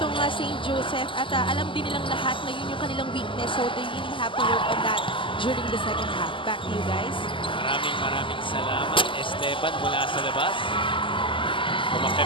St. Joseph at alam din nilang lahat na yun yung kanilang weakness, so they really have to work on that during the second half. Back to you guys. Maraming salamat, Esteban, mula sa labas.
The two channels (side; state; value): right; late; 0.25 ms